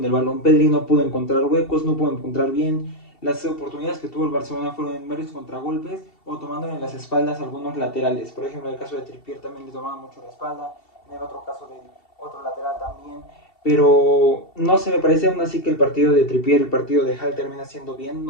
el balón. Pedri no pudo encontrar huecos, no pudo encontrar bien. Las oportunidades que tuvo el Barcelona fueron en varios contragolpes o tomándole en las espaldas a algunos laterales. Por ejemplo, en el caso de Trippier también le tomaba mucho la espalda. En el otro caso del otro lateral también. Pero no se me parece aún así que el partido de Trippier, el partido de Hall termina siendo bien,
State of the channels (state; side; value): late; right; 2.7 ms